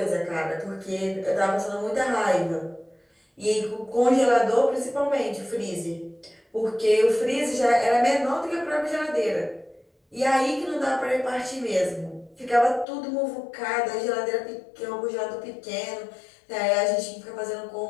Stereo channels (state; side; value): drops out; right; at 12.9 s